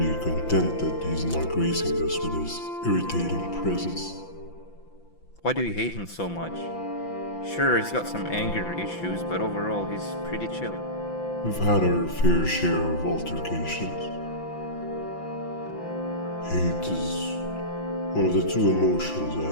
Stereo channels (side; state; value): right; late; 5.9 ms